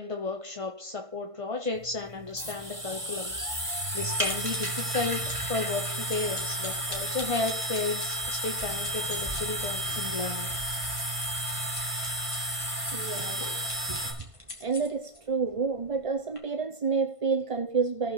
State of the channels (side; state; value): left; late; 1.5 ms